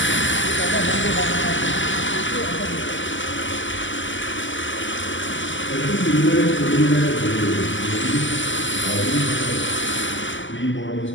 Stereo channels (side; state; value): right; late; 0.55 ms